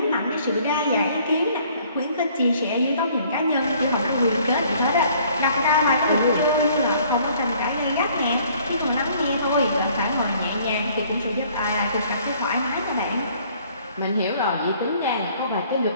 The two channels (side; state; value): both; inverted; correlation -0.59